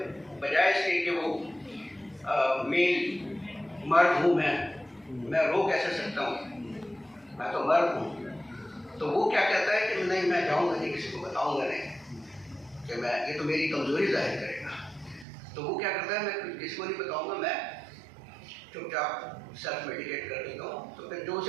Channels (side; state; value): left; drops out; at 15.2 s